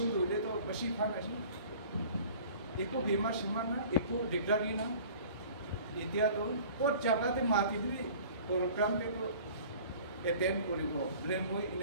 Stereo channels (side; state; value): both; inverted; correlation -0.46